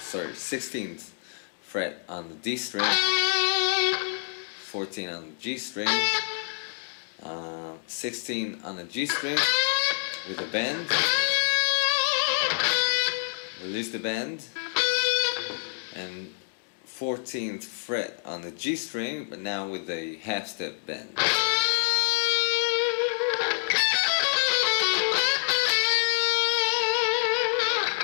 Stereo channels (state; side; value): silent; right; digital silence